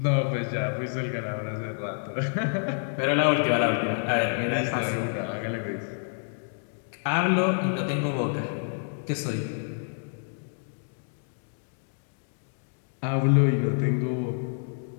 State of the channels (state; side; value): silent; right; digital silence